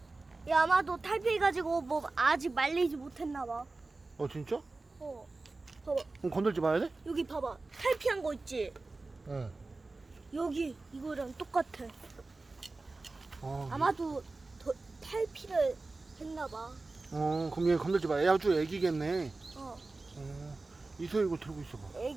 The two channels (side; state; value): left; quieter; 3.4 dB